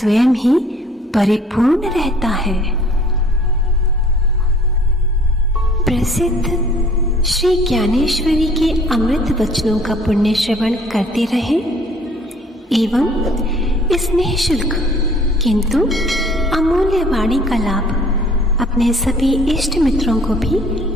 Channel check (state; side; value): normal; both; correlation 0.55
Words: ही परिपूर्ण रहता है। प्रसिद्ध श्री ज्ञानेश्वरी के अमृत वचनों का पुण्य श्रवण करते रहें एवं इस निःशुल्क किंतु अमूल्य वाणी का लाभ अपने सभी इष्ट मित्रों को भी